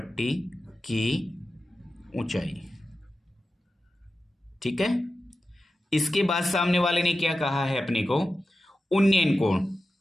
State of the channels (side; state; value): both; normal; correlation 0.93